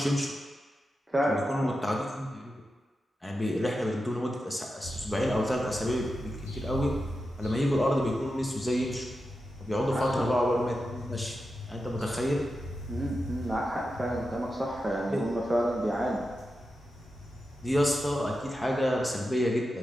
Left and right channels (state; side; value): normal; both; correlation 0.90